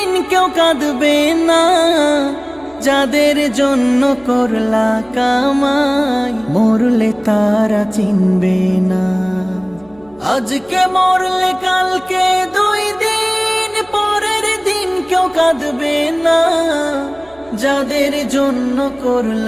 কেউ কাঁদবে না। যাদের জন্য করলা কামাই মরলে তারা চিনবে না। আজকে মরলে কালকে 2 দিন পরের দিন কেউ কাঁদবে না। যাদের জন্য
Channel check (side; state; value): right; noise; hum, 28 dB below the sound